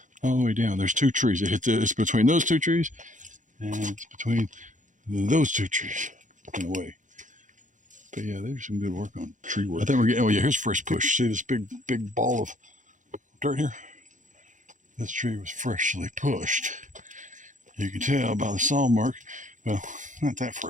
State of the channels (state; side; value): late; left; 0.37 ms